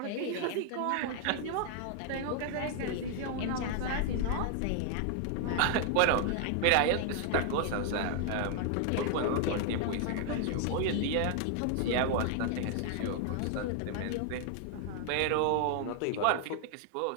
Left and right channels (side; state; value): both; different; correlation 0.00